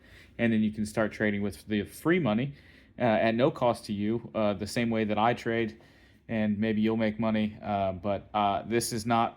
And then you can start trading with the free money at no cost to you, the same way that I trade, and maybe you'll make money. But this is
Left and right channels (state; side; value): identical; both; correlation 1.00